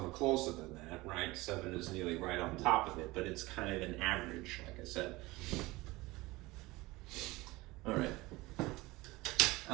are closer than that, right? 7 is nearly right on top of it, but it's kind of an average, like I said. All right.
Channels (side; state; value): left; quieter; 21.0 dB